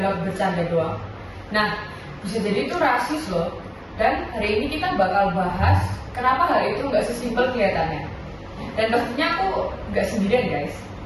bercanda doang? Nah, bisa jadi itu rasis loh. Dan hari ini kita bakal bahas kenapa hal itu nggak sesimpel kelihatannya. Dan pastinya aku nggak sendirian guys.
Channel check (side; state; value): both; identical; correlation 1.00